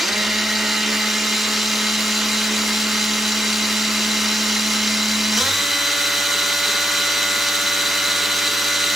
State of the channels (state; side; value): normal; both; correlation 0.82